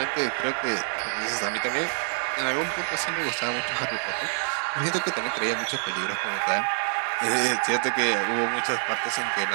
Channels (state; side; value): silent; left; digital silence